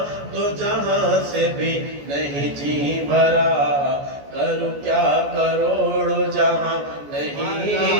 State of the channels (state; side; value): late; left; 14 ms